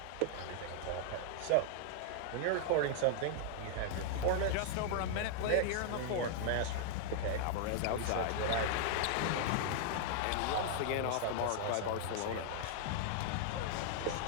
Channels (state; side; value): different; both; correlation -0.01